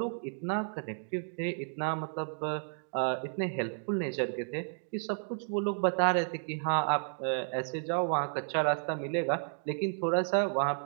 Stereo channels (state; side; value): silent; left; digital silence